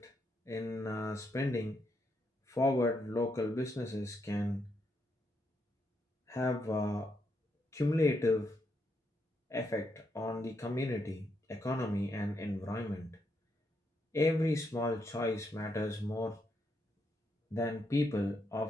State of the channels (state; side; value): normal; both; correlation 0.79